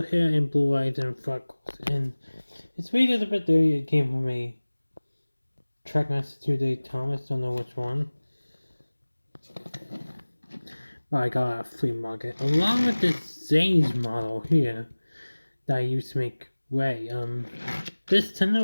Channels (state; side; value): inverted; both; correlation -1.00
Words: hair and blue eyes and freckles, and his weight is a bit dirty. It came from a Trackmaster Thomas, don't know which one. But I got a flea market along with this Zane's model here that I used to make Ray. This